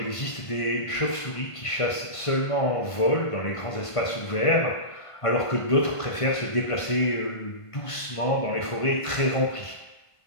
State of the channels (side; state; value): right; late; 1.5 ms